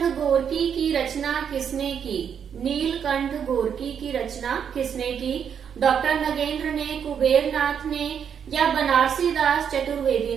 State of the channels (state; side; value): quieter; left; 7.8 dB